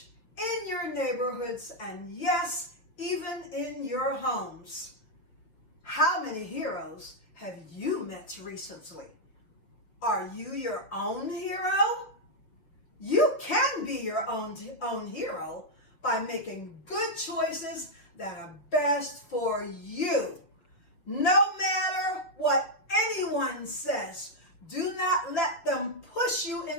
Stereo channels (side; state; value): right; late; 5.9 ms